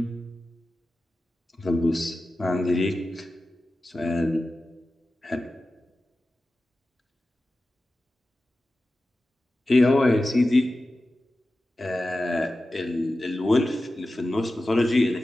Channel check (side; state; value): both; normal; correlation 0.94